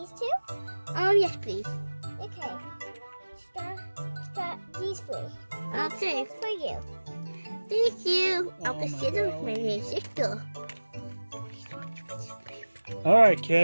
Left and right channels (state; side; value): inverted; both; correlation -1.00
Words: too? Yes, please. Okay. These three. Okay. That's for you. Thank you. I'll Oh, consider my with my sister. All right,